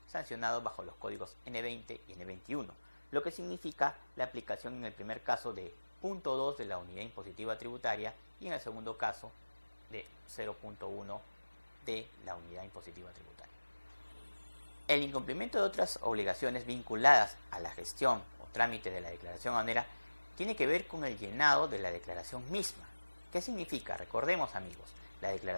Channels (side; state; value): both; inverted; correlation -1.00